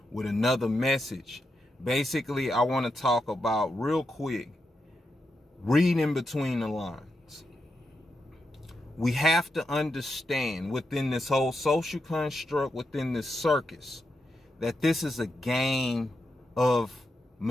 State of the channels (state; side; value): normal; both; correlation 0.85